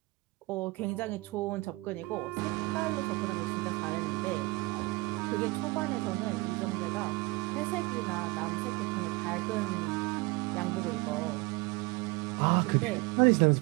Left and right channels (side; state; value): left; quieter; 23.9 dB